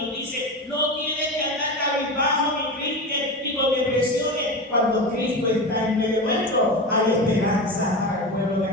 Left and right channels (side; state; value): both; normal; correlation 0.24